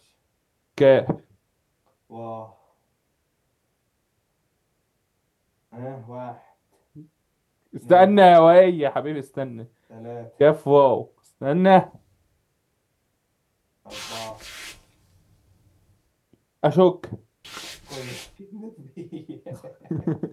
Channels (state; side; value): identical; both; correlation 1.00